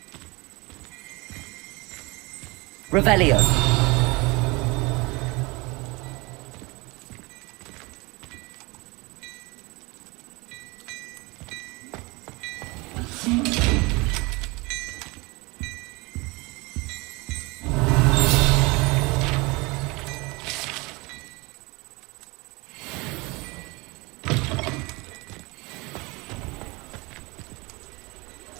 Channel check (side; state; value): left; quieter; 25.7 dB